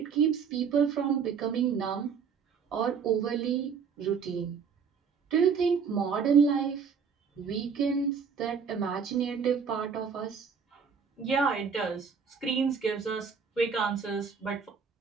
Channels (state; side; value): quieter; left; 6.2 dB